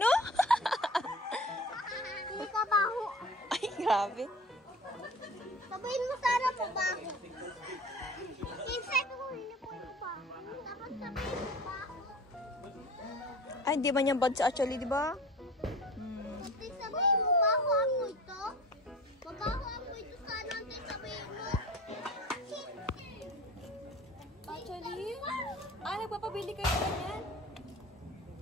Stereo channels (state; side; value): normal; both; correlation 0.40